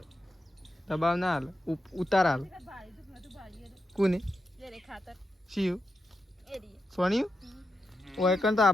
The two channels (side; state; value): both; normal; correlation 0.87